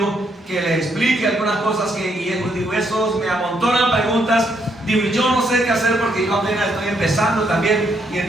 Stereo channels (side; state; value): both; normal; correlation 0.74